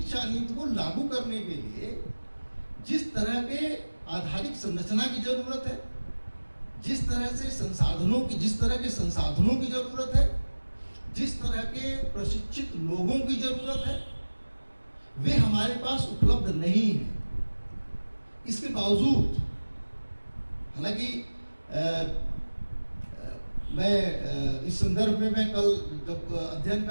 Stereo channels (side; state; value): both; inverted; correlation -1.00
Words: नीति को लागू करने के लिए जिस तरह के आधारिक संरचना की जरूरत है, जिस तरह के संसाधनों की जरूरत है, जिस तरह के प्रशिक्षित लोगों की जरूरत है, वे हमारे पास उपलब्ध नहीं है। इसके बावजूद हालांकि मैं इस संदर्भ में मैं कल जब अध्ययन